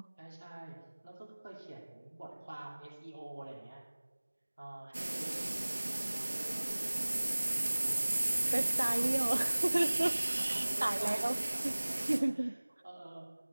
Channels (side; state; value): both; inverted; correlation -1.00